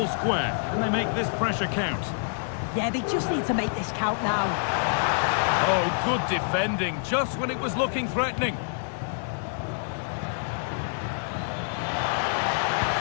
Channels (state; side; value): silent; right; digital silence